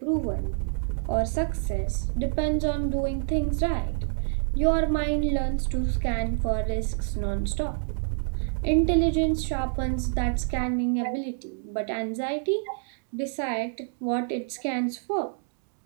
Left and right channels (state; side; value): silent; left; digital silence